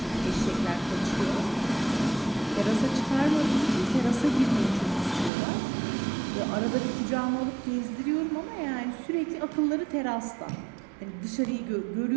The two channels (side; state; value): left; drops out; at 5.3 s